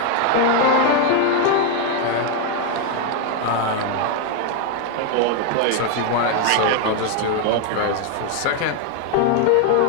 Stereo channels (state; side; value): different; both; correlation 0.01